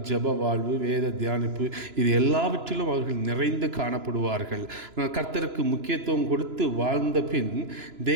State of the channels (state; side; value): late; left; 3.0 ms